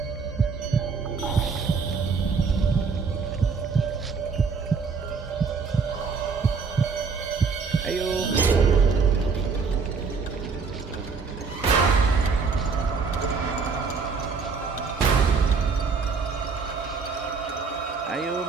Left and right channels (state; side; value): quieter; left; 5.1 dB